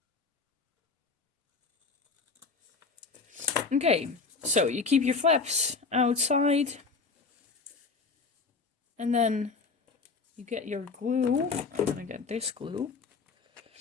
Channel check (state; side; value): quieter; right; 4.4 dB